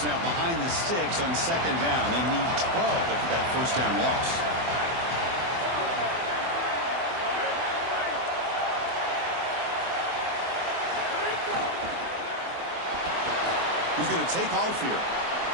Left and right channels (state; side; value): late; left; 24 ms